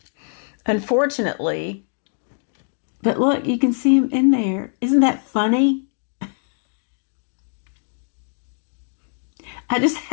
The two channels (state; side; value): silent; right; 64 dB below the other